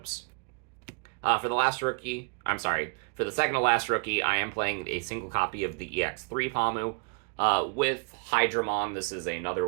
For the last rookie, for the second to last rookie, I am playing a single copy of the EX3 Pamu. With Hydramon, this is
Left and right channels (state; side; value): quieter; left; 35.4 dB